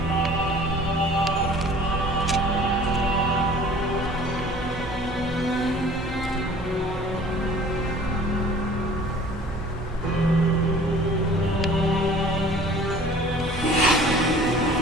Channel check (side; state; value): both; normal; correlation 0.49